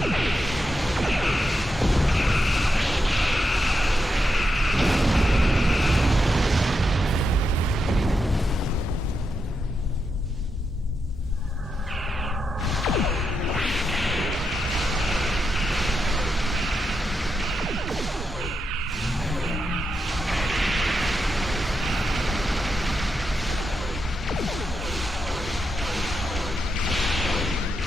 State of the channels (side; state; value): both; normal; correlation 0.85